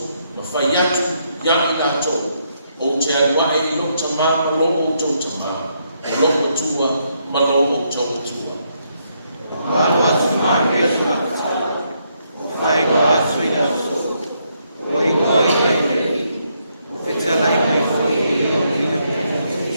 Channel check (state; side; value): inverted; both; correlation -0.76